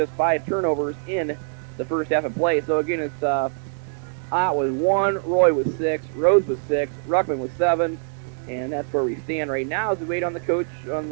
5 turnovers in the first half of play. So again, it's Ott was 1, Roy was 6, Rhodes was 6, Ruckman was 7, and that's where we stand right now as we wait on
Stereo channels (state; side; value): silent; left; 63 dB below the other